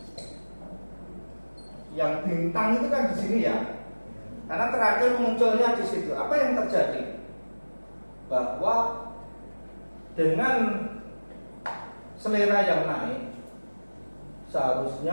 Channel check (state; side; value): inverted; both; correlation -1.00